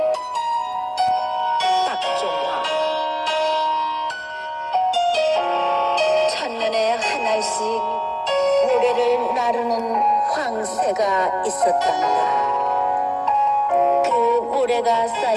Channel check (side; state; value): both; identical; correlation 1.00